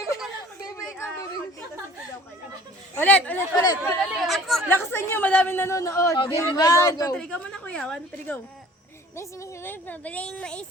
Ulit. Lakasan niyo, madaming nanonood. Game 1, 2, 3. Ikaw muna kuya. 1, 2, 3, go. Bis, pabiling mais,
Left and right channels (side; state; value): both; normal; correlation 0.49